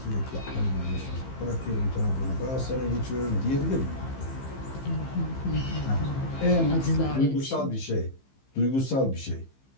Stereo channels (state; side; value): late; right; 15 ms